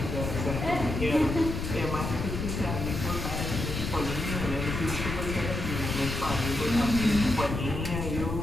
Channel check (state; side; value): noise; left; rumble, 4 dB below the sound